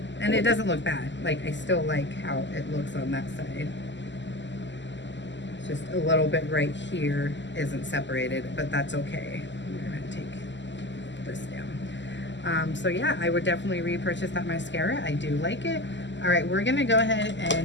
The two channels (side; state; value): right; late; 0.53 ms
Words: and it doesn't look bad. Like, I still like how it looks on that side. It's just a little bit right here isn't separated, but that's okay. I'm gonna take this down. So yeah, I would definitely repurchase that mascara. I do like it. All right, we're gonna go ahead